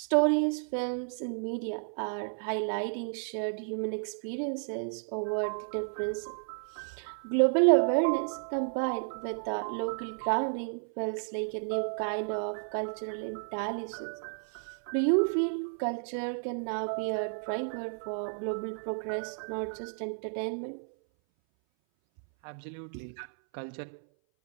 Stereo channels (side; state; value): left; silent; 56 dB below the other